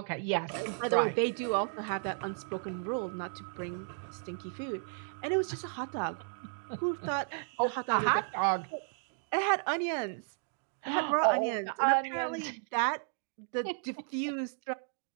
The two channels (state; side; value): silent; left; 55 dB below the other